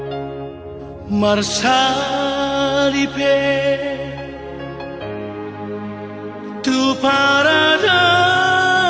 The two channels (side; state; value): both; identical; correlation 1.00